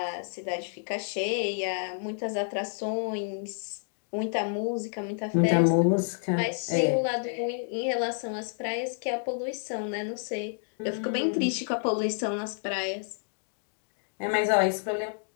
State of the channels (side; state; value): right; silent; digital silence